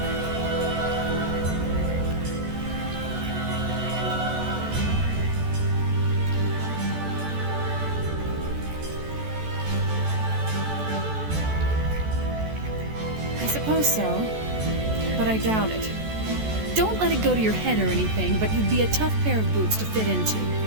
I suppose so, but I doubt it. Don't let it go to your head or anything, but you'd be a tough pair of boots to fit into.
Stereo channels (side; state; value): left; late; 14 ms